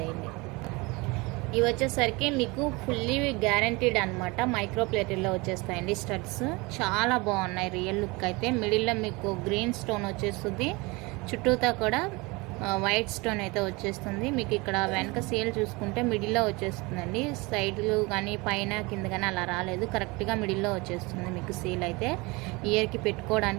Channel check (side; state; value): left; quieter; 25.2 dB